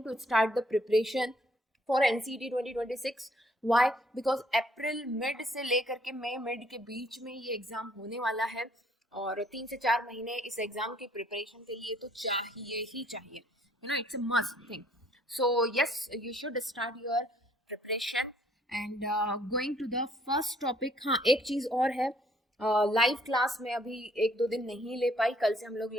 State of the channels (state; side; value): normal; both; correlation 0.64